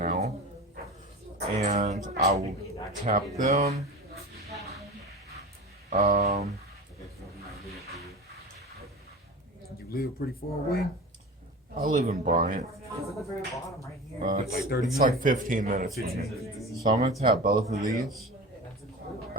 And I will tap them. You live pretty far away? I live in Bryant. It's like 15 minutes from me. So I'm going to tap both of these.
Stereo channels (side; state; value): both; normal; correlation 0.32